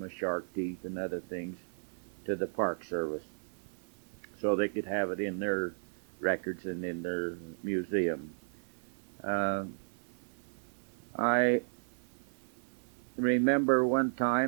shark teeth and other things to the Park Service, so they could have it in their records and in their museum. I remember one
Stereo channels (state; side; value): silent; left; 55 dB below the other